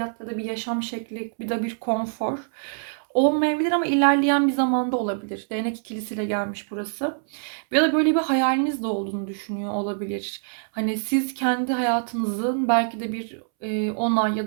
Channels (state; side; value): silent; left; 62 dB below the other